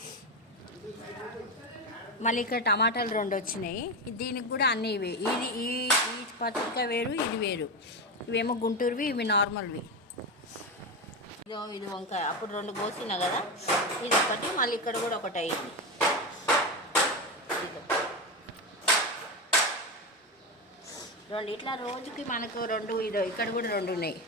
మళ్ళీ ఇక్కడ టమాటాలు 2 వచ్చినాయి. దీనికి కూడా అన్నీ ఇవి. ఈ పచ్చడికాయ వేరు, ఇది వేరు. ఇవేమో గుంటూరువి, ఇవి నార్మల్వి. ఇది వంకాయ. అప్పుడు 2 కోసినా కదా, ఇది ఒకటి. మళ్ళీ ఇక్కడ కూడా ఒకటి అయింది. ఇట్లా రోజుకి మనకు 2. ఇక్కడ కూడా 2 ఉన్నాయి.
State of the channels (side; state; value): both; normal; correlation 0.15